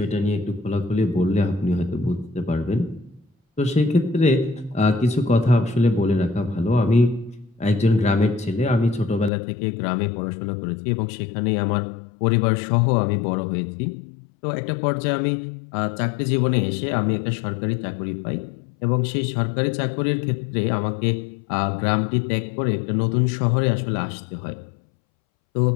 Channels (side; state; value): right; drops out; at 9.3 s